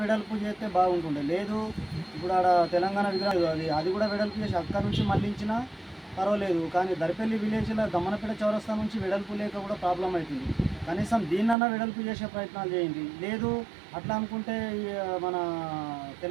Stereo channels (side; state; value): left; drops out; at 11.6 s